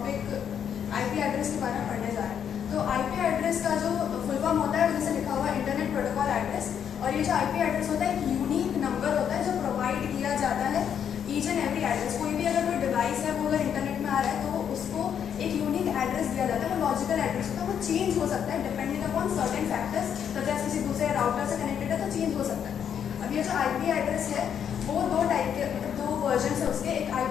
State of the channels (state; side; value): quieter; right; 8.4 dB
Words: IP address के बारे में पढ़ने जा रहे हैं। तो आईपी एड्रेस का जो फुल फॉर्म होता है जैसे लिखा हुआ इंटरनेट प्रोटोकॉल एड्रेस, और ये जो आईपी एड्रेस होता है एक यूनिक नंबर होता है जो प्रोवाइड किया जाता है ईच एंड एवरी एड्रेस। कोई भी अगर कोई डिवाइस है वो अगर इंटरनेट में आ रहा है तो उसको एक यूनिक एड्रेस दिया जाता है, वो लॉजिकल एड्रेस होता है, वो चेंज हो सकता है depending upon certain factors, such as किसी दूसरे राउटर से कनेक्टेड है तो चेंज हो सकता है। अब ये जो आईपी एड्रेस है वो दो टाइप के मतलब दो वर्जन है उसके, एक